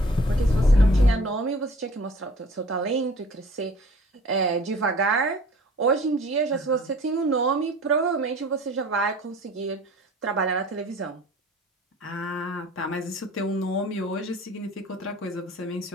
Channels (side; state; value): both; normal; correlation 0.48